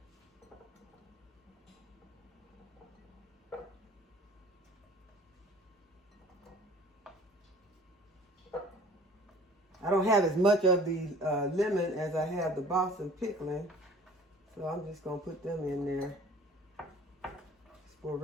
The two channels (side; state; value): both; normal; correlation 0.48